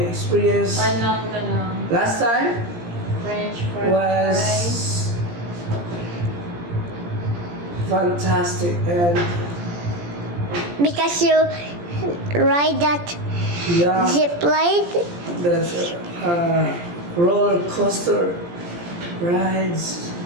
experience last time French fries. was fantastic, and Because you ride that yeah, zip line? that's roller coaster rides,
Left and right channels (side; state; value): left; late; 17 ms